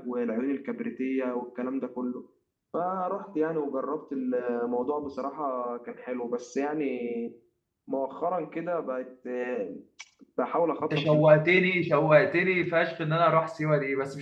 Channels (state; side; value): identical; both; correlation 1.00